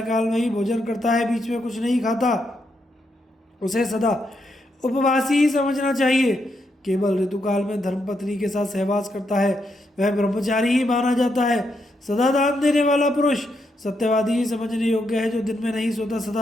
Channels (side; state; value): both; normal; correlation 0.81